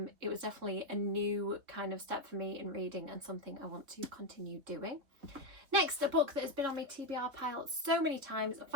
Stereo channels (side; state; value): left; late; 3.4 ms